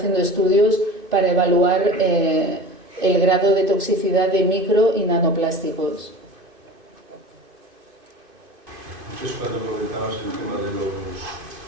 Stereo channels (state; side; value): late; left; 2.5 ms